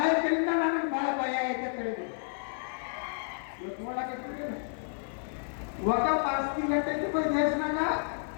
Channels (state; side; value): silent; right; 57 dB below the other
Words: ನನಗೆ ಬಹಳ ಭಯ ಐತೆ ತಿಳಿದು ಇವತ್ತು ನೋಡಕ್ಕೆ ವಕಫ್ ಆಸ್ತಿ ಗಟ್ಟೈತಿ ದೇಶನಾಗ